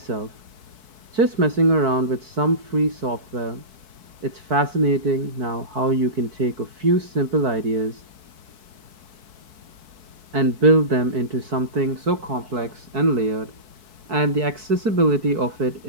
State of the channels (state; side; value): late; left; 4.6 ms